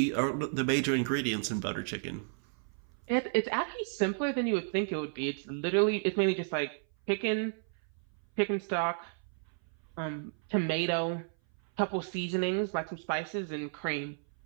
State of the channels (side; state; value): left; silent; 56 dB below the other